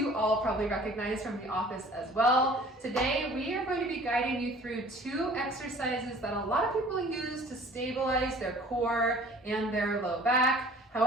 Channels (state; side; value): normal; both; correlation 0.49